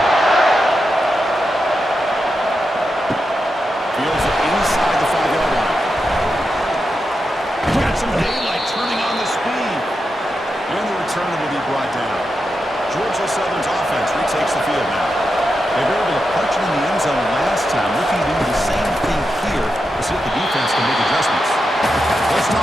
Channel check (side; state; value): both; normal; correlation 0.88